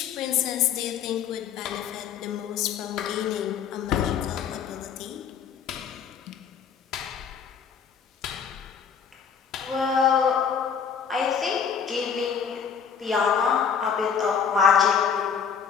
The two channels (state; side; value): quieter; right; 7.1 dB